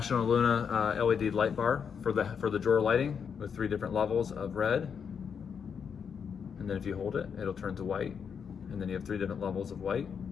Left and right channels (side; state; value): right; quieter; 6.9 dB